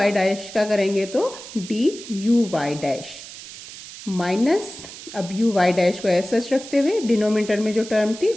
dash का करेंगे तो D you Y dash minus अब यू वाई डैश को ऐसे सच रखते हुए डिनोमिनेटर में जो टर्म थी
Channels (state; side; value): noise; right; hiss, 14 dB below the sound